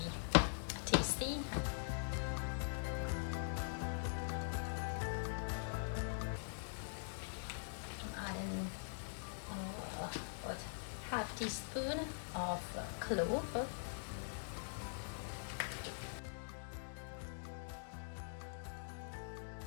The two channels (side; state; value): right; silent; digital silence